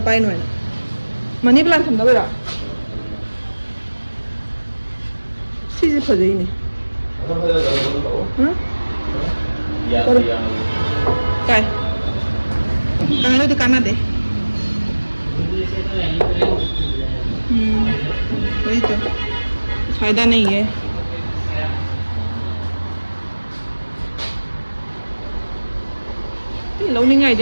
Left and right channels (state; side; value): inverted; both; correlation -1.00